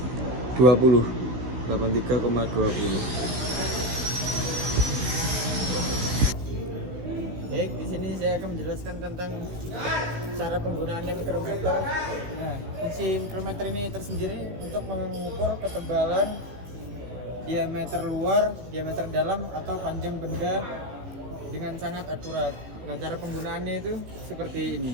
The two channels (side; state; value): left; late; 16 ms